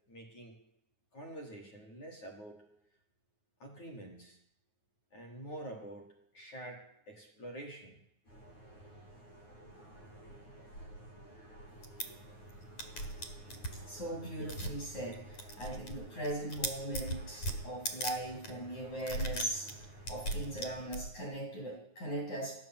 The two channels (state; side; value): late; right; 9.5 ms